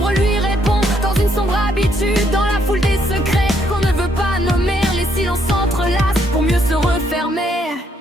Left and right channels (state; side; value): normal; both; correlation 0.72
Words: lui répond dans une sombre habitude. Dans la foule des secrets qu'on ne veut pas nommer, les silences s'entrelacent pour mieux se refermer.